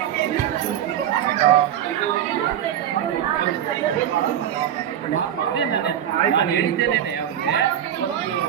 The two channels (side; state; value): left; quieter; 10.4 dB